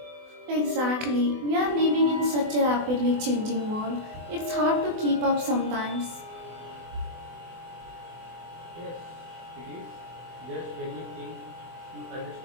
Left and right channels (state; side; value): late; left; 24 ms